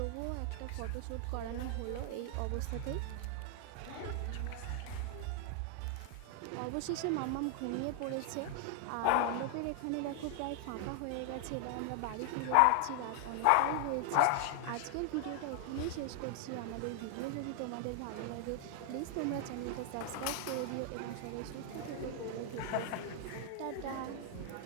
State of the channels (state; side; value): different; both; correlation 0.00